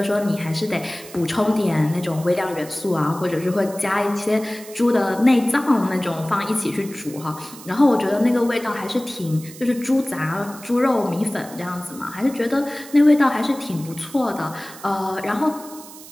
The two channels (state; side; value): noise; right; hiss, 17 dB below the sound